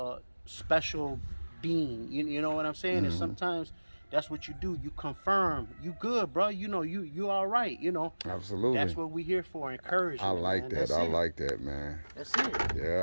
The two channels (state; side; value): inverted; both; correlation -1.00